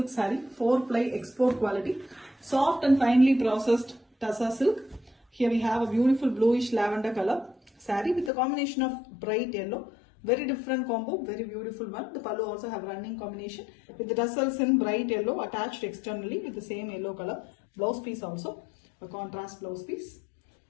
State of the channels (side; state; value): right; drops out; at 8.3 s